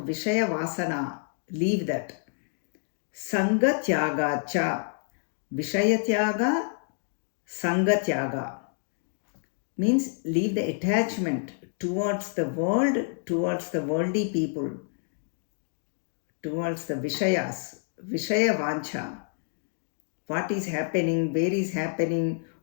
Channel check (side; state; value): right; silent; digital silence